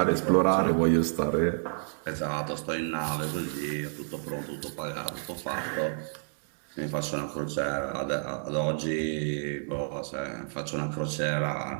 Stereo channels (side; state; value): left; silent; digital silence